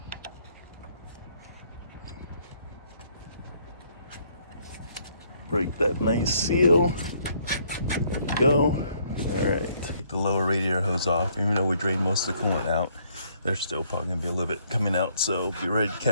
Break that nice seal. There you go. All right. Take the lower radiator hose off. Even though we drained most of the coolant out, there's still probably gonna be a little bit coming out, so be ready to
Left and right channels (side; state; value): both; inverted; correlation -0.67